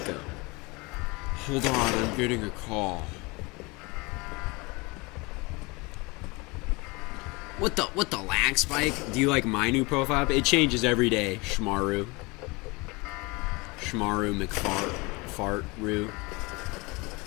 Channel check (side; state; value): right; quieter; 25.9 dB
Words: Hold on, I'm getting a call. What the lag spike? Do you like my new profile? It changes every day, Shmaru. Shmaru McFart-Roo.